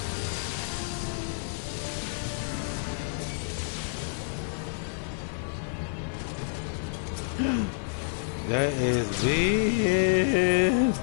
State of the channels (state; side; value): silent; right; 59 dB below the other